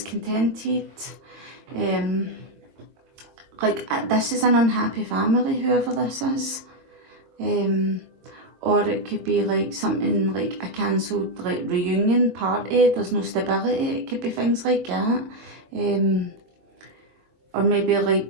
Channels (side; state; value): left; late; 22 ms